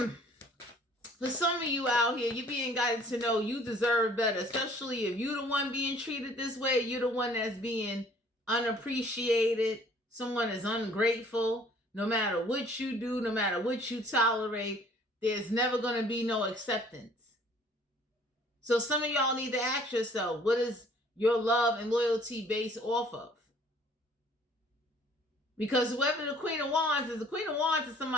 For some of you out here, you're being guided to know you deserve better, especially if you're the one being treated this way, you're the one that's being unappreciated, someone is ungrateful. No matter what you do, no matter what you tolerate, there's never going to be no acceptance. So some of y'all need to ask yourself, what is your love and loyalty based off of? Because whoever the Queen of Wands is, the Queen of Wands is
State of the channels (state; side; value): normal; both; correlation 0.55